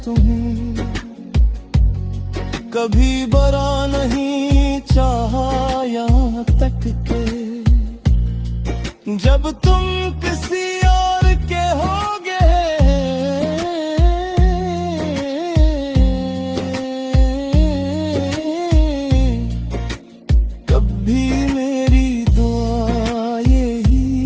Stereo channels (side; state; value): both; identical; correlation 1.00